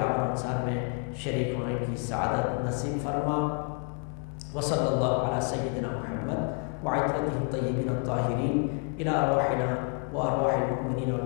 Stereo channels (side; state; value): right; quieter; 38.1 dB